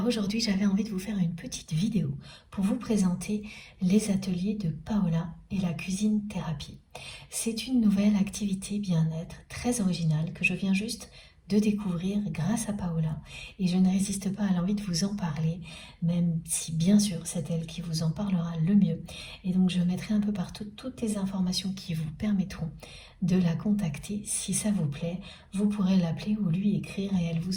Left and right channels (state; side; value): identical; both; correlation 1.00